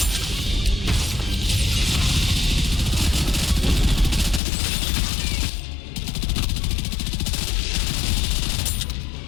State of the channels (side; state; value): right; drops out; at 4.4 s